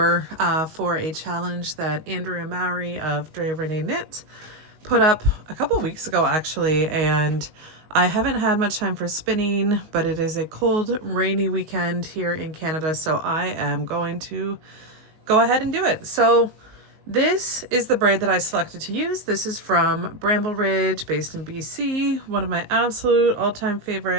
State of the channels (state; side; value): late; left; 19 ms